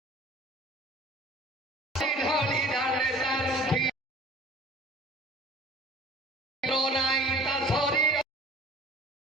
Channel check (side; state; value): both; normal; correlation 0.47